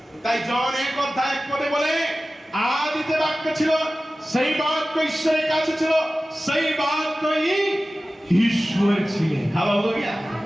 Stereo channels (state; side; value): normal; both; correlation 0.96